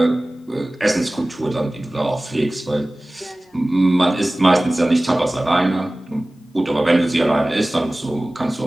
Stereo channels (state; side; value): normal; both; correlation 0.98